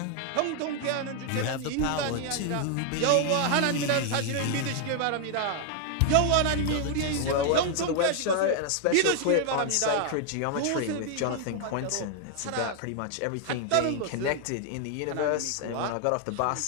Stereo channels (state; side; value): different; both; correlation 0.00